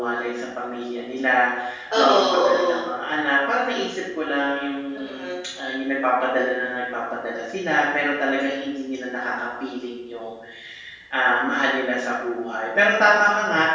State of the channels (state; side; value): identical; both; correlation 1.00